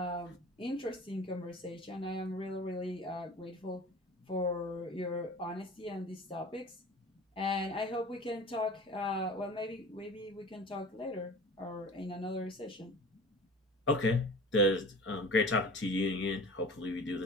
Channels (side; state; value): both; normal; correlation 0.40